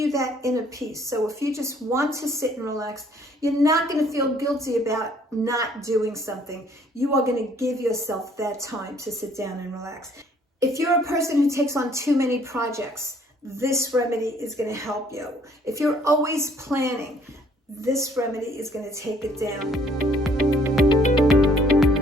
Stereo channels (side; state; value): both; normal; correlation 0.61